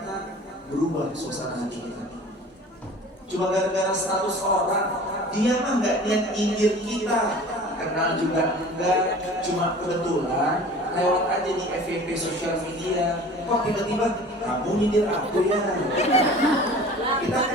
berubah suasana hati kita. Cuma gara-gara status orang, dia mah nggak niat nyindir kita, kenal juga enggak, cuma kebetulan lewat aja di FYP sosial media. Kok tiba-tiba kamu nyindir aku ya? Kita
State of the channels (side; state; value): both; normal; correlation 0.43